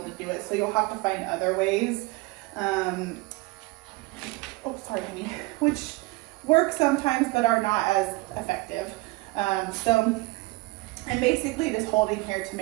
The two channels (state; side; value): quieter; left; 22.8 dB